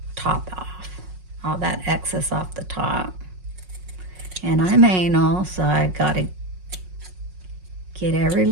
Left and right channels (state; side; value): late; left; 5.5 ms